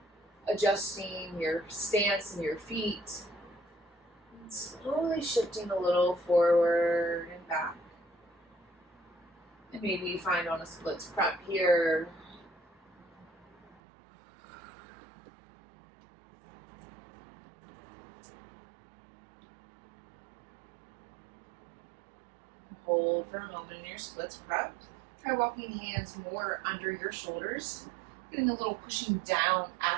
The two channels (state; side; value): drops out; left; at 13.8 s